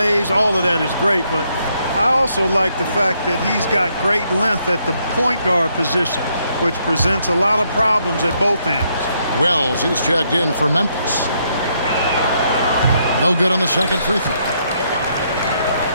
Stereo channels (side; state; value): both; inverted; correlation -0.74